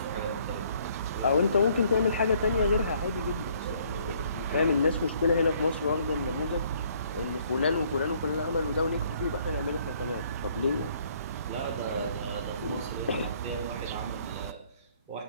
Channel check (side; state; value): both; inverted; correlation -0.63